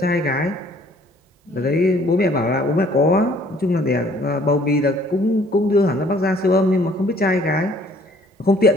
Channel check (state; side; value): normal; both; correlation 0.59